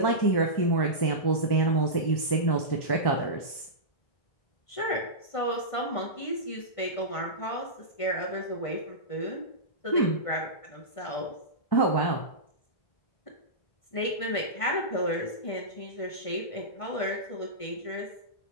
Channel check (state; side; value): late; right; 1.5 ms